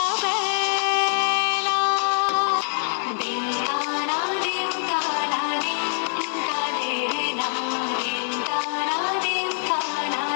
বেলা দিন তারা দিন তারা দিন কাঁদে রে না, দিন তারা দিন তারা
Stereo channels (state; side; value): silent; right; digital silence